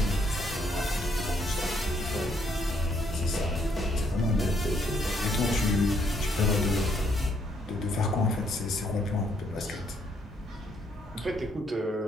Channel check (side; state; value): both; normal; correlation 0.71